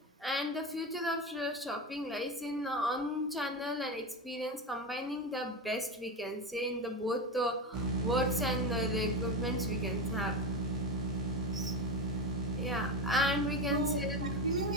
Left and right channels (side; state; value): both; normal; correlation 0.19